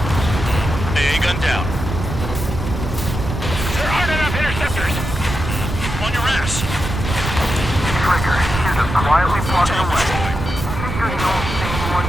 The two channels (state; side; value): noise; right; rumble, 5 dB below the sound